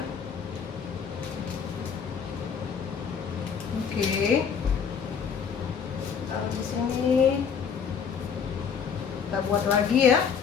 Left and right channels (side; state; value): right; quieter; 6.8 dB